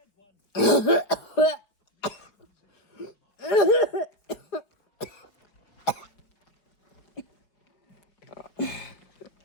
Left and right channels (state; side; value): late; right; 5.0 ms